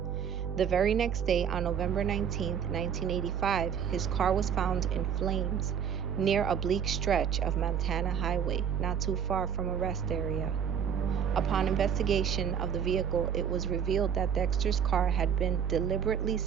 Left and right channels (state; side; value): quieter; left; 7.9 dB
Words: The very next day, on November 19, 1985, his car was found in flames near a bleak stretch of Montana Highway, not too far from a rest area. Upon investigation of the vehicle, it was revealed that Dexter's car had been deliberately